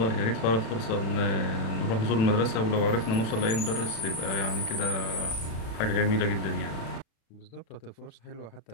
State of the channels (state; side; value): late; right; 36 ms